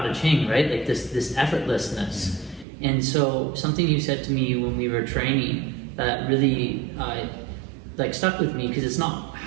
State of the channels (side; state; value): left; drops out; at 2.7 s